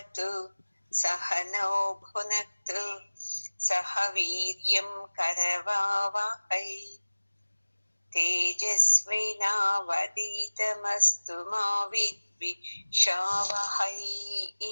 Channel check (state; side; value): inverted; both; correlation -1.00